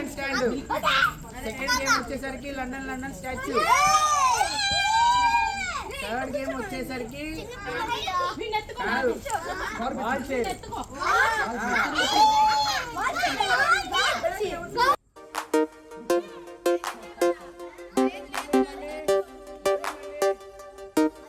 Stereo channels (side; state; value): both; identical; correlation 1.00